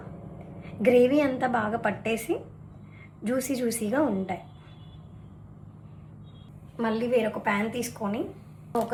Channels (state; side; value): identical; both; correlation 1.00